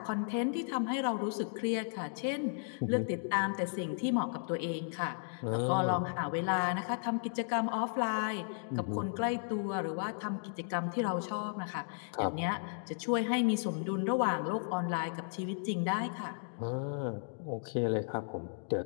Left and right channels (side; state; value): right; silent; digital silence